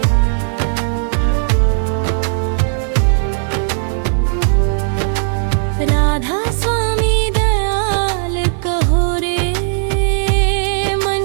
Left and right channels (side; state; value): left; silent; digital silence